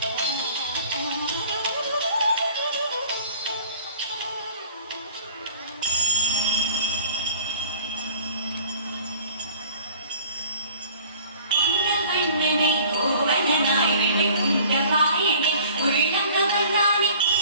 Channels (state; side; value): inverted; both; correlation -0.48